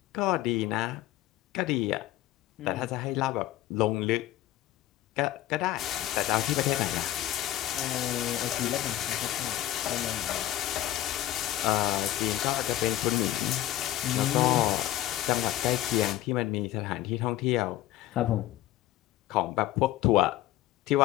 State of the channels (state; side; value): quieter; right; 14.4 dB